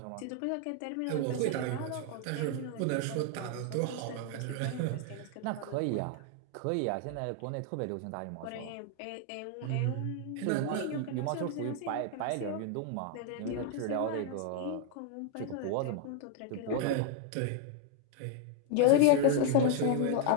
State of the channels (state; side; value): different; both; correlation 0.00